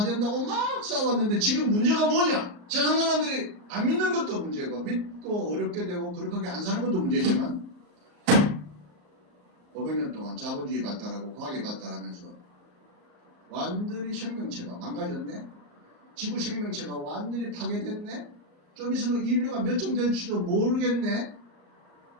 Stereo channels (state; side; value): late; left; 38 ms